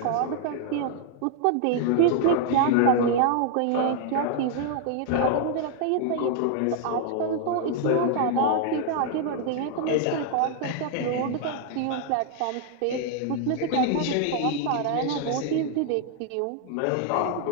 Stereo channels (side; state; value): both; different; correlation 0.00